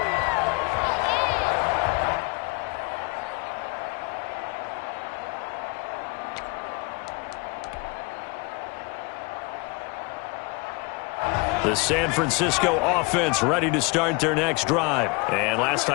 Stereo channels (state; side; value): quieter; right; 27.8 dB